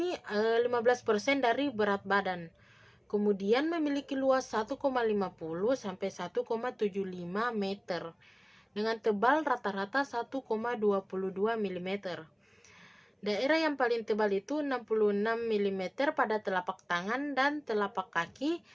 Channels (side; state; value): both; identical; correlation 1.00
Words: 15% dari berat badan. Kemudian memiliki luas 1,50 sampai 1,75 meter dengan tebal rata-rata 1,22 mm. Daerah yang paling tebal itu 66 mm pada telapak tangan dan telapak kaki,